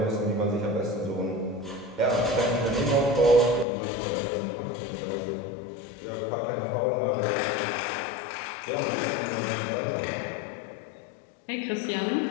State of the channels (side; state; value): right; drops out; at 3.7 s